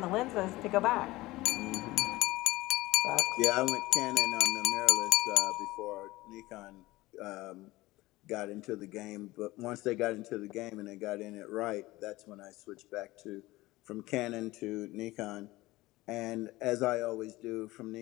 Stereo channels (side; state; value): right; quieter; 19.2 dB